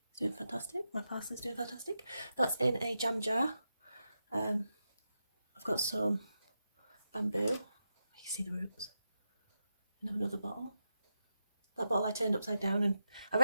is doing fantastic. My parsley is doing fantastic. That's in a jam jar. I've got some bamboo. You can see the roots. And have another bottle. That bottle I turned upside down, and I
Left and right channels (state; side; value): inverted; both; correlation -0.87